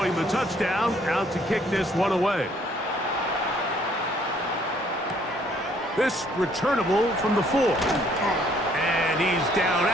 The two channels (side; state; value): both; normal; correlation 0.63